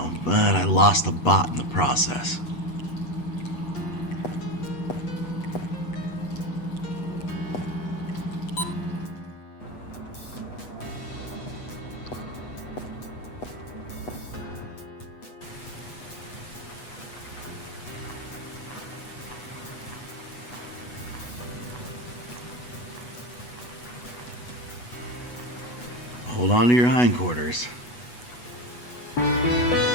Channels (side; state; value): right; late; 8.2 ms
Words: but I lost a bot in the process. Hold on to your hindquarters.